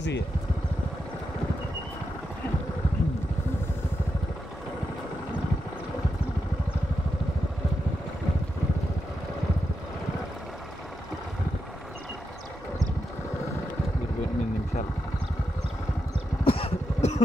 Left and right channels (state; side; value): normal; both; correlation 0.86